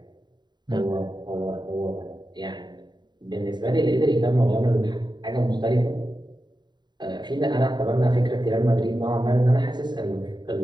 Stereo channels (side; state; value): left; late; 0.21 ms